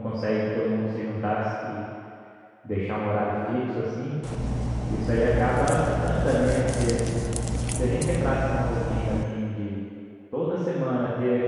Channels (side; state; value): both; identical; correlation 1.00